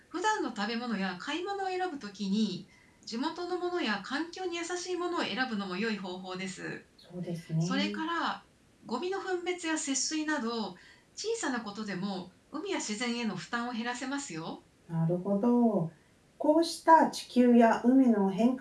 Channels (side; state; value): both; identical; correlation 1.00